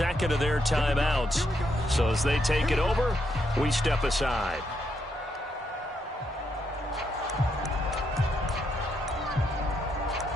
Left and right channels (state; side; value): normal; both; correlation 0.78